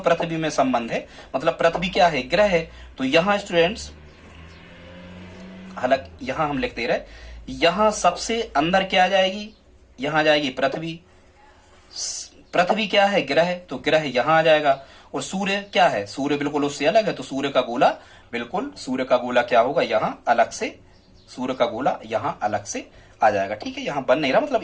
में संबंध है, मतलब पृथ्वी क्या है? ग्रह है। तो यहाँ स्टूडेंट्स, हालांकि यहाँ हम लिखते रहे, यहाँ सबसे अंदर क्या आ जाएगी? यहाँ आ जाएगी पृथ्वी। पृथ्वी क्या है? ग्रह, तो ग्रह यहाँ आ जाएगा। और सूर्य क्या है? सूर्य बिल्कुल उससे अलग है। तो सूर्य का गोला, बिल्कुल सूर्य का गोला क्या होगा? यहाँ अलग से, सूर्य का गोला यहाँ अलग से आ जाएगा। ठीक है, यहाँ बन नहीं रहा, मतलब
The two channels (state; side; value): identical; both; correlation 1.00